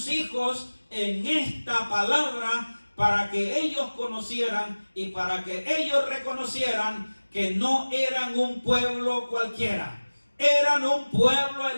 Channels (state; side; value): inverted; both; correlation -1.00